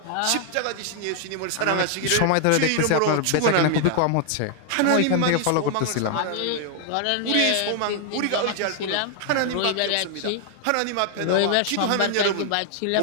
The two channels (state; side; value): different; both; correlation 0.00